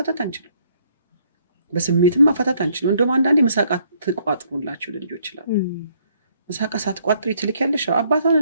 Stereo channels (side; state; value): both; inverted; correlation -0.67